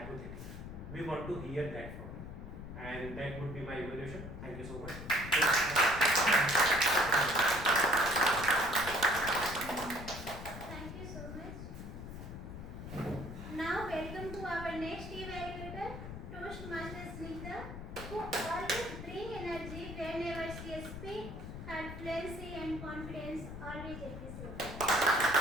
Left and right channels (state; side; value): noise; left; rumble, 9 dB below the sound